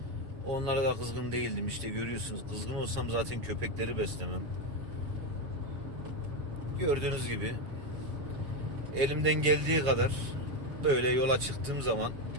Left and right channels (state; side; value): late; left; 7.1 ms